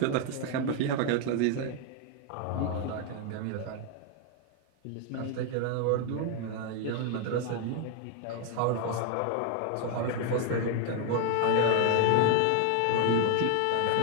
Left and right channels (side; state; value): both; different; correlation 0.00